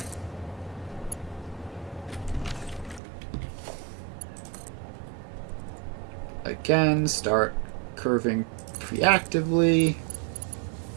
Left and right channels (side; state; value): left; drops out; at 3.0 s